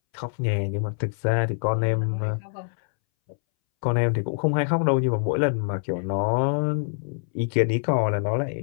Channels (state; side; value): silent; right; 62 dB below the other